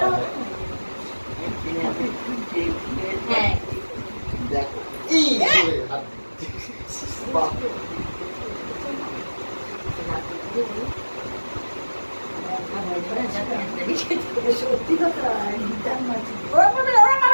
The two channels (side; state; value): both; inverted; correlation -1.00